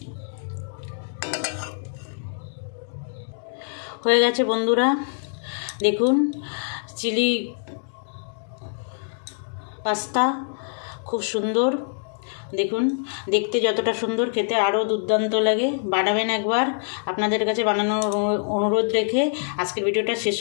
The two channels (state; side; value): silent; right; digital silence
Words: হয়ে গেছে বন্ধুরা, দেখুন চিলি পাস্তা খুব সুন্দর। দেখুন দেখতে যতটা সুন্দর, খেতে আরও দুর্দান্ত লাগে। বানাবেন একবার, আপনাদের কাছে বানানোর অনুরোধ রেখে আজকের ভিডিওটা শেষ